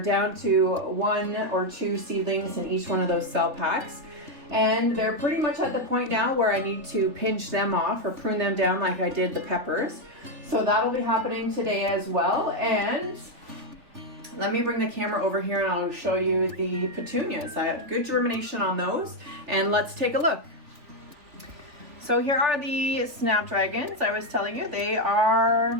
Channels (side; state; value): left; late; 3.4 ms